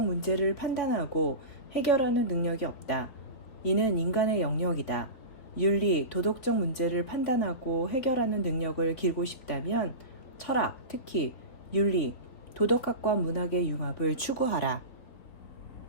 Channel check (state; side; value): late; right; 4.1 ms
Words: 문제를 판단하고 해결하는 능력이 없다. 이는 인간의 영역이다. 윤리, 도덕적 문제를 판단하고 해결하는 능력을 기르고 싶다면 철학, 특히 윤리, 도덕학과 문학의 융합을 추구하라.